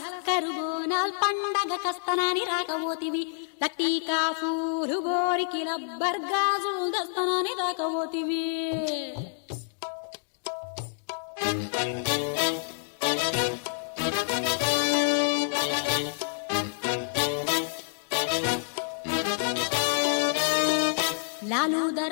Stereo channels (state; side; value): silent; right; digital silence